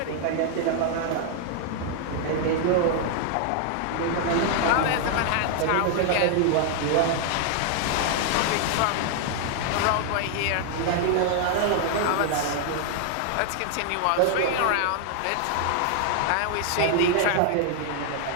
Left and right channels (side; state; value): both; different; correlation 0.00